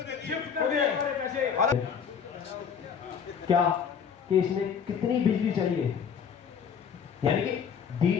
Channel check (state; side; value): quieter; right; 7.0 dB